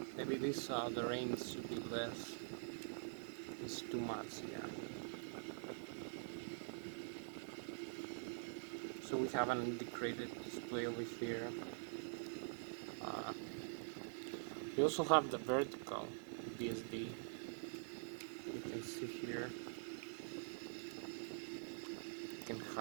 Maybe this the range should be less. It's too much, yeah. So we have an integrated display over here. We also have the vertical BSD. You can see here. You can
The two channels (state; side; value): silent; left; digital silence